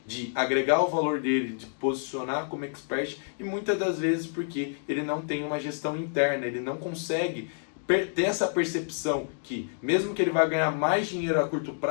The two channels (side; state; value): right; silent; digital silence